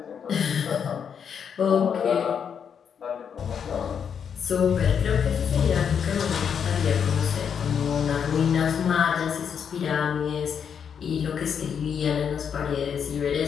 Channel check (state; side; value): quieter; right; 7.4 dB